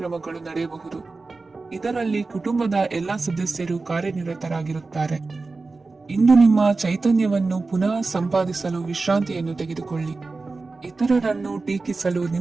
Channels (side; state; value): left; quieter; 3.8 dB